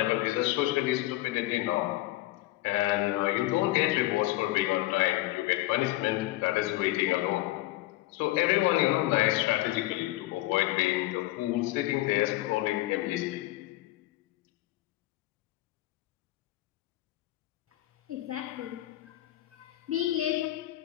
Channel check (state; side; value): quieter; right; 17.4 dB